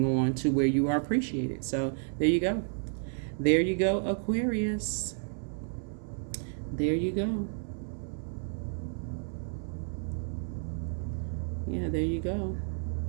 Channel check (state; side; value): silent; left; 57 dB below the other